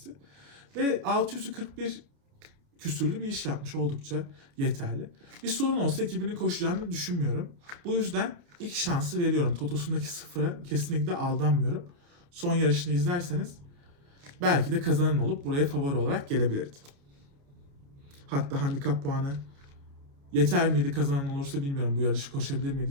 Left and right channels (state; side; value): late; left; 29 ms